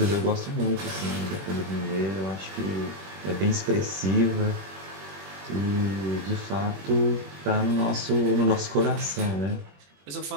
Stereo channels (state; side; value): late; left; 21 ms